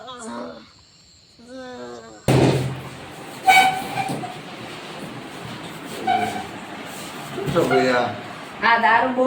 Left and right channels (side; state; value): both; identical; correlation 1.00